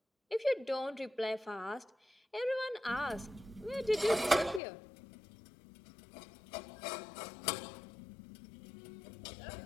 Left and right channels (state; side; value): drops out; right; at 4.6 s